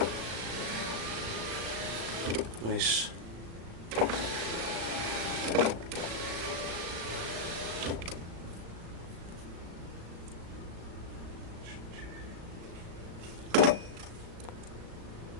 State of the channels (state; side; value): late; left; 36 ms